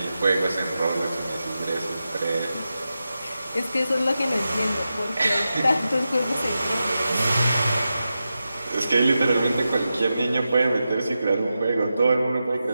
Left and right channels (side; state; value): both; inverted; correlation -0.91